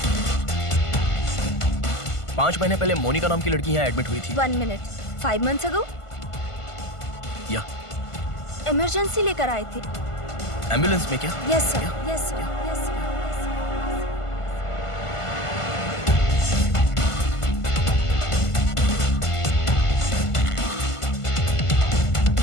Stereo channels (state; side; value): late; right; 1.5 ms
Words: पांच महीने पहले मोनिका नाम की लड़की यहाँ एडमिट हुई थी। 1 मिनट। 5 months ago? या इमरजेंसी लेकर आए थे। एम्बुलेंस में क्या? Yes sir, yes sir, yes sir.